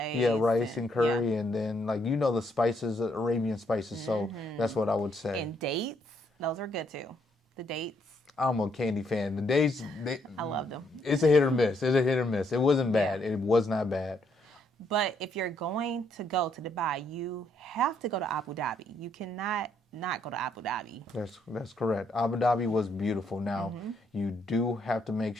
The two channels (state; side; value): normal; both; correlation 0.72